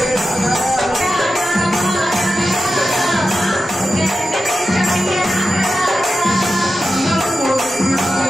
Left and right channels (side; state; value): both; normal; correlation 0.91